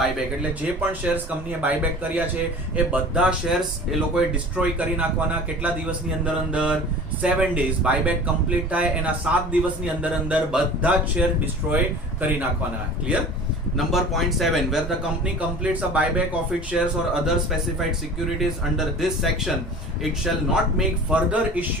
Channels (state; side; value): normal; both; correlation 0.41